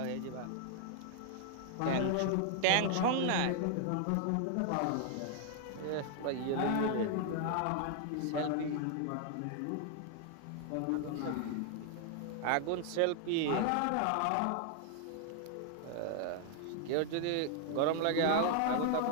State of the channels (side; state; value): both; different; correlation 0.00